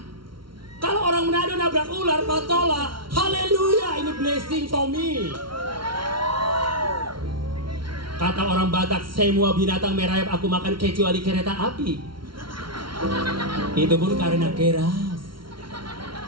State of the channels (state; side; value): late; left; 0.74 ms